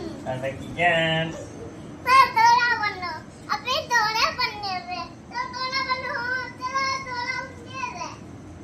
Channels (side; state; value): both; identical; correlation 1.00